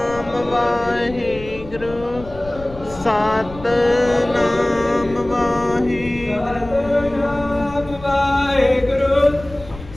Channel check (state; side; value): noise; left; rumble, 16 dB below the sound